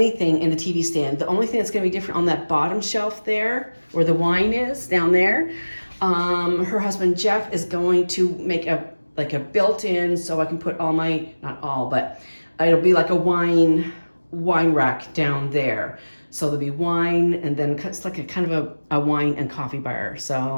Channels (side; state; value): both; inverted; correlation -1.00